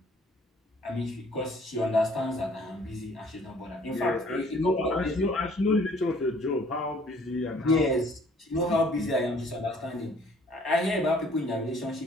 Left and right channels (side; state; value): both; normal; correlation 0.58